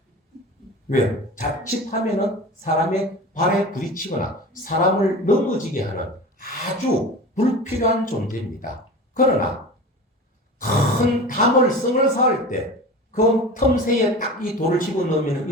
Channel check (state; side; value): normal; both; correlation 0.33